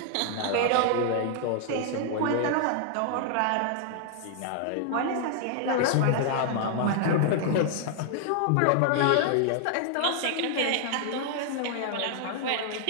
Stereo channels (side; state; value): both; different; correlation 0.00